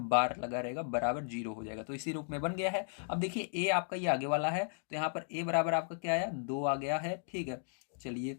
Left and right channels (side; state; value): right; silent; digital silence